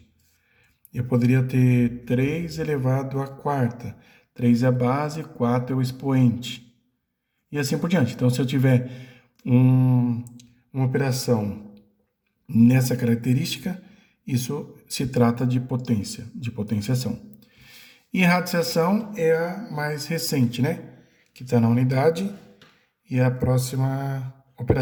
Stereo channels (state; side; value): identical; both; correlation 1.00